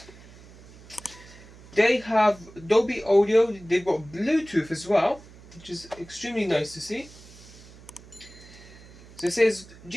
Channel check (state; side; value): noise; right; hum, 21 dB below the sound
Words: They have Dolby Audio. They've got Bluetooth as well, which is extremely nice to see. So it says